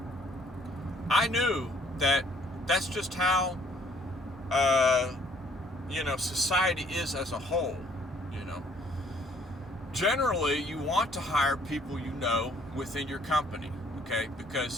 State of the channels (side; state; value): both; normal; correlation 0.62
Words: I knew that that's just how, society is as a whole, you know. Generally, you want to hire people you know within your company, okay?